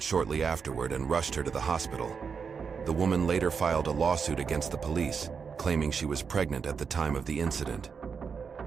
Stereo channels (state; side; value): quieter; left; 6.0 dB